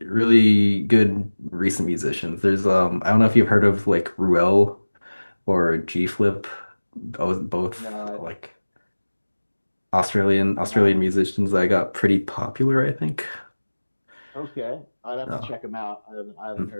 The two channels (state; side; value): inverted; both; correlation -1.00